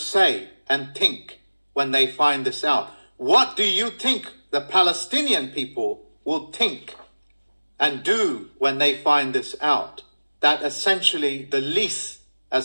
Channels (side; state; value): both; inverted; correlation -1.00